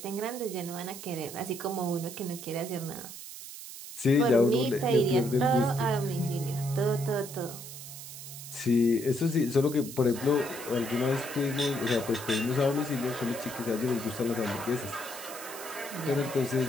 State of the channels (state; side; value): noise; right; hiss, 12 dB below the sound